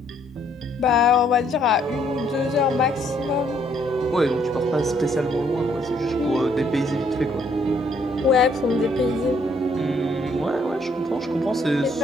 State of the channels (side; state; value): both; normal; correlation 0.67